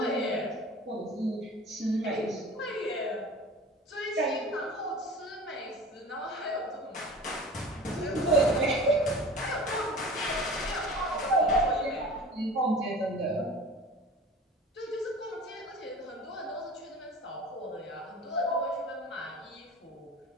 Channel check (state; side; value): normal; both; correlation 0.39